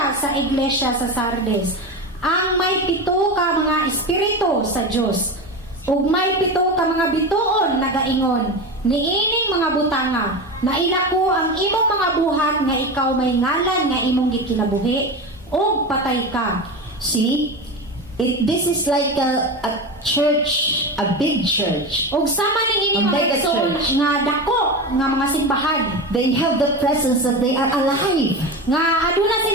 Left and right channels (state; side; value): normal; both; correlation 0.23